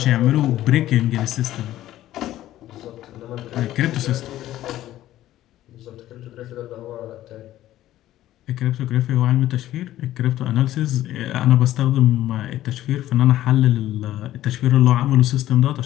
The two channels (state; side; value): quieter; right; 13.9 dB